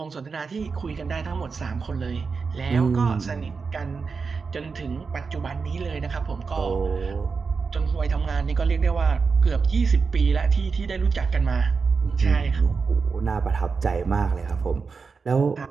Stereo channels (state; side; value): quieter; left; 5.0 dB